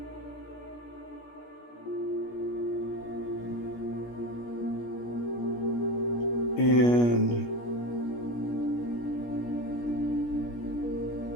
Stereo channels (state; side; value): late; right; 17 ms